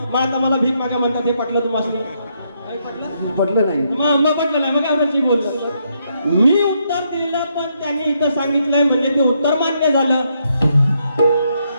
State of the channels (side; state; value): both; inverted; correlation -0.77